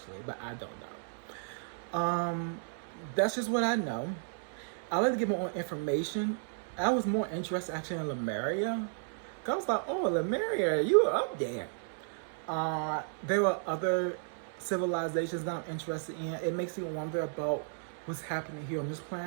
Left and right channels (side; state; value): left; silent; 55 dB below the other